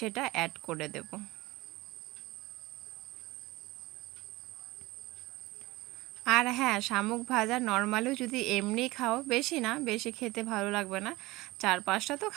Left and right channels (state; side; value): quieter; left; 20.1 dB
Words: অ্যাড করে দেব। আর হ্যাঁ, শামুক ভাজা নর্মালিও যদি এমনি খাও, বেশি না, বেশি খেতে ভালো লাগবে না, 4-5টা তো